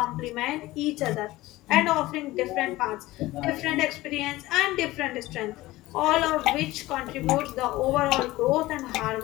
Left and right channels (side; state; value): right; quieter; 18.2 dB